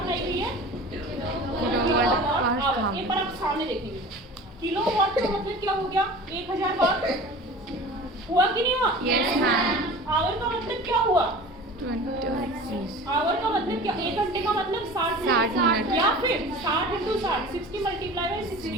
गई है? Kilowatt hour. एक बार आप सामने देखेंगे, किलोवाट का मतलब क्या हो गया? 1000 वाट हुआ कि नहीं हुआ? Yes ma'am. आवर का मतलब क्या हुआ? 20। आवर का मतलब क्या? 1 घंटे का मतलब 60 मिनट। या फिर 60 × 60, 60 मल्टीप्लाई बाय 60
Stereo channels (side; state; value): both; normal; correlation 0.38